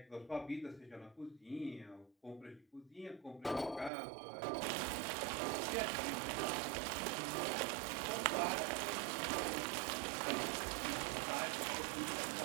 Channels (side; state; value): left; drops out; at 3.9 s